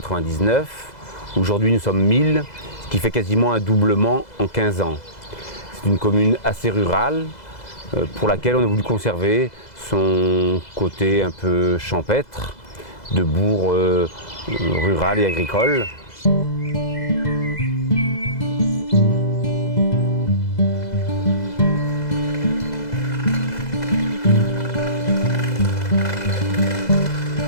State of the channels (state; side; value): late; right; 2.0 ms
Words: Aujourd'hui, nous sommes 1000, ce qui fait quasiment un doublement en 15 ans. C'est une commune assez rurale pour laquelle on a voulu conserver son côté un peu champêtre, de bourg rural et agricole.